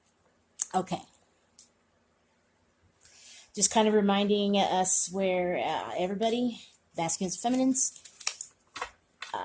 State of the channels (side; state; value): both; identical; correlation 1.00